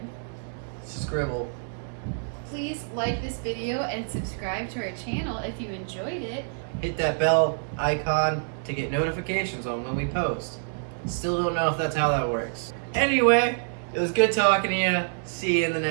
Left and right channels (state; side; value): silent; left; 60 dB below the other